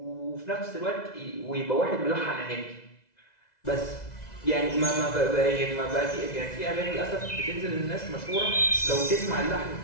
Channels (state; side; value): late; right; 2.0 ms